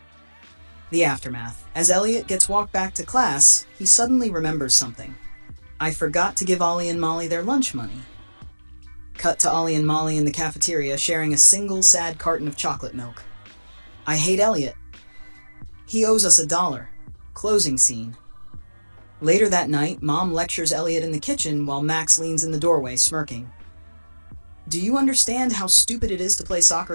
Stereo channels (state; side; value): inverted; both; correlation -1.00